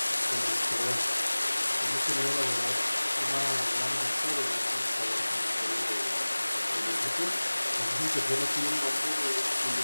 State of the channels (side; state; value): both; inverted; correlation -1.00